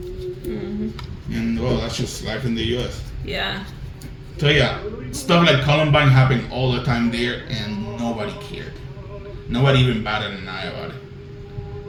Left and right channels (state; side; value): identical; both; correlation 1.00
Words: Mm-hmm. And well, that's just life in the U.S. Yeah. So yeah, stuff like Columbine happened all the time there, and nobody cared. Nobody even batted an eye about it.